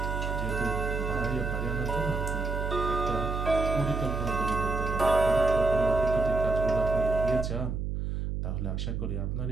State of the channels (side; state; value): right; noise; hum, 2 dB below the sound